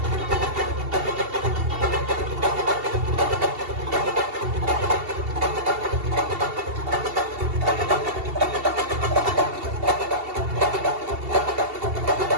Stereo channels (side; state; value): left; late; 2.7 ms